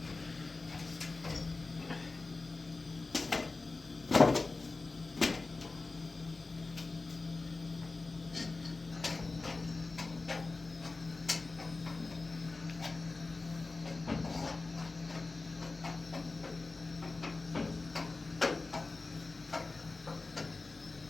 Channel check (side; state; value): right; quieter; 3.6 dB